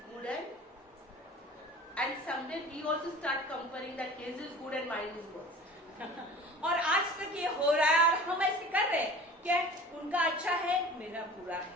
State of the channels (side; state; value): both; normal; correlation 0.41